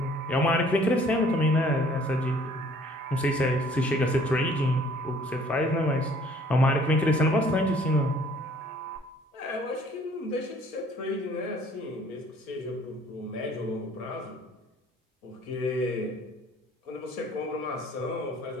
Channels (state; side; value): normal; both; correlation 0.56